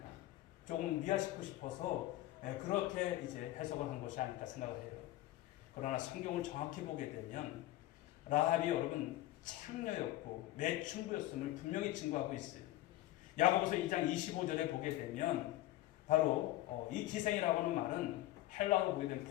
조금 미화시키고 싶어서 그렇게 이제 해석을 한 것이 아닐까 생각을 해요. 그러나 성경을 정확히 보게 되면 라합이 여러분 창녀였고 매춘부였음을 분명히 증거하고 있어요. 야고보서 2장 25절에 보게 되면 바로 이 기생이라고 하는 말은 헬라어로 보게 되면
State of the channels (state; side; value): quieter; right; 15.7 dB